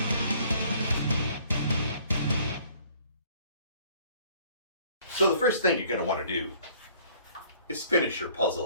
So the first thing you're going to want to do is finish your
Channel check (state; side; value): inverted; both; correlation -0.57